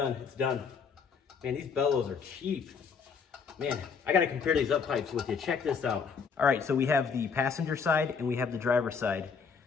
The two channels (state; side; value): quieter; right; 5.8 dB